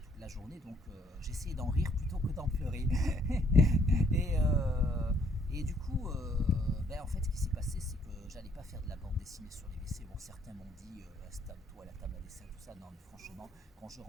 la journée, donc j'essayais d'en rire plutôt que d'en pleurer. et, du coup, en fait, ce qui s'est passé, c'est que j'allais pas faire de la bande dessinée sur les WC. Bon, certains m'ont dit installe-toi à la table à dessert, tout ça. Non, mais franchement, quand je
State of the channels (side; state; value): both; normal; correlation 0.66